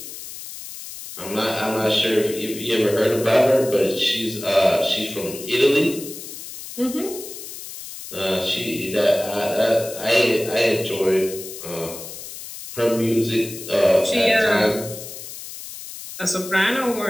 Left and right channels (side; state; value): left; noise; hiss, 12 dB below the sound